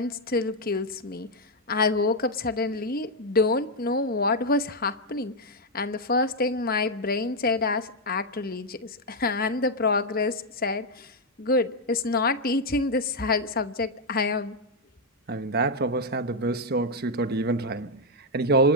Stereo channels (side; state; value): both; normal; correlation 0.00